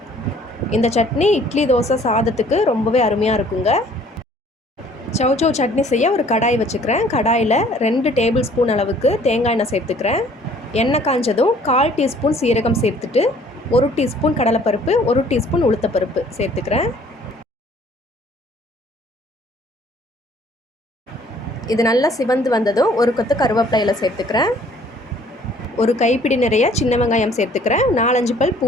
இந்த சட்னி இட்லி, தோசை, சாதத்துக்கு ரொம்பவே அருமையாக இருக்குங்க. சௌ சட்னி செய்ய ஒரு கடாய் வச்சுக்கிறேன். கடாயில் 2 டேபிள் ஸ்பூன் அளவுக்கு தேங்காய் எண்ணெய் சேர்த்துக்கிறேன். எண்ணெய் காஞ்சதும் 1/4 டீஸ்பூன் சீரகம் சேர்த்துட்டு 1 டீஸ்பூன் கடலைப்பருப்பு, 1 டீஸ்பூன் உளுத்தப்பருப்பு சேர்த்துக்கிறேன். இது நல்லா சிவந்து வந்ததும் ஒரு கொத்து கருவேப்பிலையில் சேர்த்துக்கிறேன். ஒரு கைப்பிடி நிறைய சின்ன வெங்காயம் சேர்த்துக்கிறேன். 4-5 பல்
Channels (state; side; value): normal; both; correlation 0.56